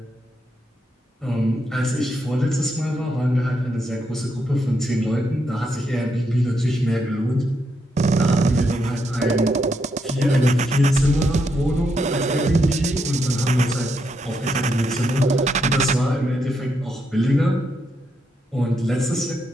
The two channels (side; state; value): both; normal; correlation 0.80